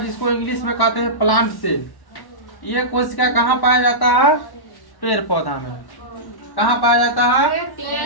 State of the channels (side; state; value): right; late; 1.1 ms